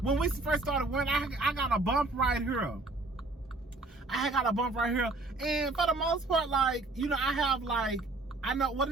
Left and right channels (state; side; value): quieter; left; 3.1 dB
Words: when we first started wearing, I got a bump right here. I got a bump right here. And for the most part, like, you know, I have like, I know, what